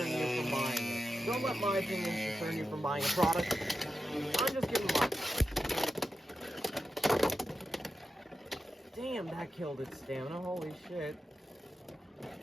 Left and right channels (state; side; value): normal; both; correlation 0.90